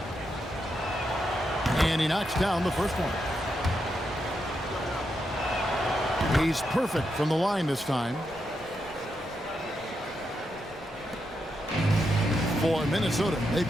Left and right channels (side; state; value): both; normal; correlation 0.83